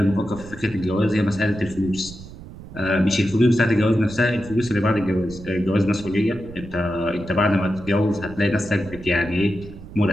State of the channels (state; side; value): noise; right; rumble, 15 dB below the sound